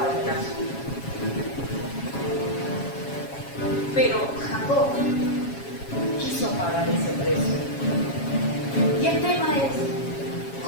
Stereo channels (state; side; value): late; right; 7.3 ms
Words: en el asunto. Pero Jacob quiso pagar ese precio. Y el tema es,